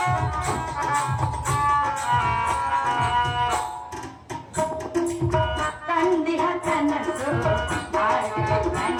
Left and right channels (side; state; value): both; identical; correlation 1.00